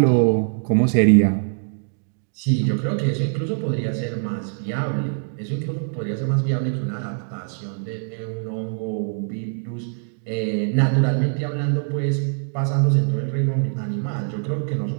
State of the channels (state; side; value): silent; left; digital silence